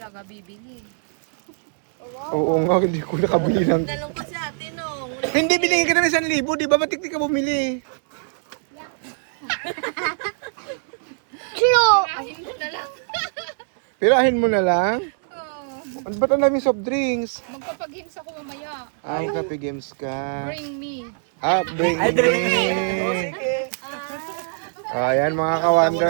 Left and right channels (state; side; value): silent; left; digital silence